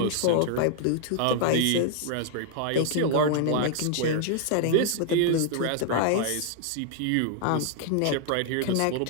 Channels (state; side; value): different; both; correlation 0.00